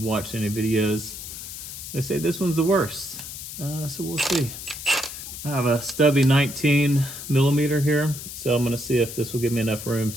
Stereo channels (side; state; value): left; noise; hiss, 10 dB below the sound